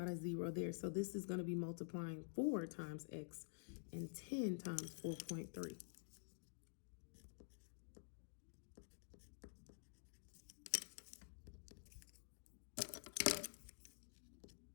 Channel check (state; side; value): silent; right; digital silence